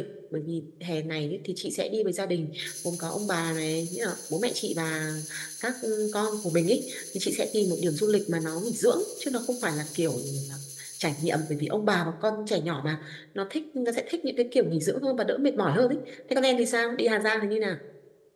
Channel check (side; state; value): both; identical; correlation 1.00